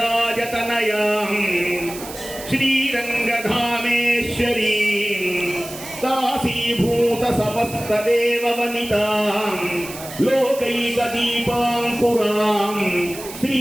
శ్రీరంగధామేశ్వరీ దాసీభూత సమస్త దేవ వనితాం లోకైక దీపాంకురాం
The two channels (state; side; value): noise; right; hiss, 13 dB below the sound